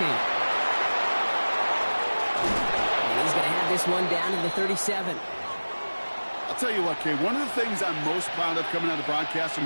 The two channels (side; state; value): both; inverted; correlation -1.00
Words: And he's going to have this one down to the 37. I'll tell you what, Kate, one of the things I'm most proud of coming out of the broadcast are